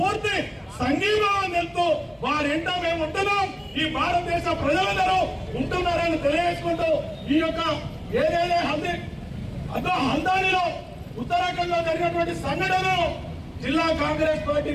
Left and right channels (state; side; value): identical; both; correlation 1.00